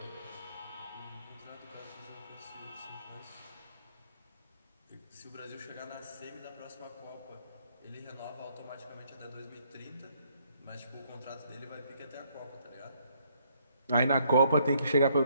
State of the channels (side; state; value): both; inverted; correlation -0.69